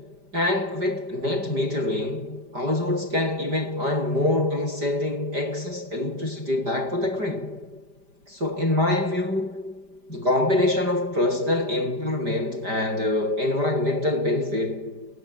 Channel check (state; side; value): late; left; 5.0 ms